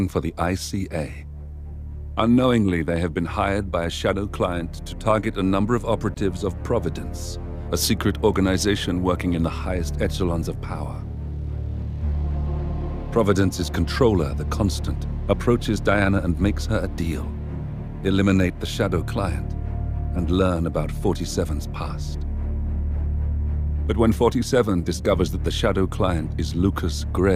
for the ICA. Unknowingly, they have been hired by a shadow client to target a number of operatives of Providence, a secret organization working in the highest echelons of power. Providence's controller, the Constant, approaches Diana and makes her a deal. Eliminate the shadow client and learn about 47's past. But when 47 discovers that the shadow client is Lucas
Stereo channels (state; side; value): identical; both; correlation 1.00